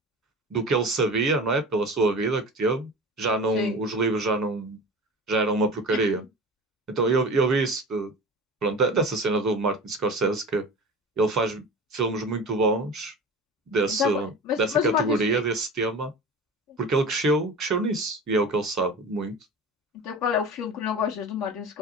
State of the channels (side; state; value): both; normal; correlation 0.34